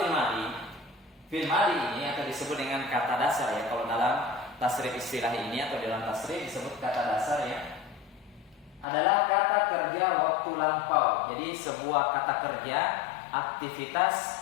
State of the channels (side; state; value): right; drops out; at 8.8 s